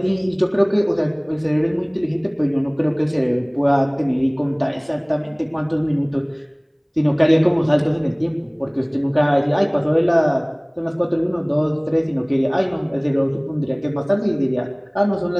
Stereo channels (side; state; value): both; identical; correlation 1.00